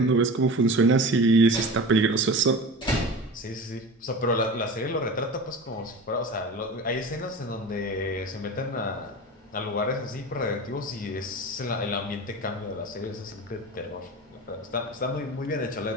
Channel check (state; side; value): normal; both; correlation 0.32